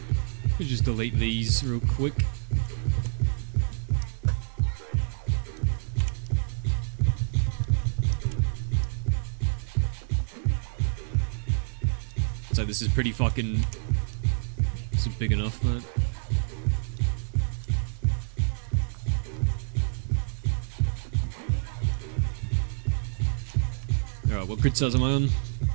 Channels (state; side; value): silent; left; digital silence